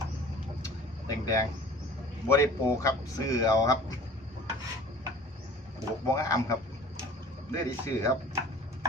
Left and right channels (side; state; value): both; normal; correlation 0.46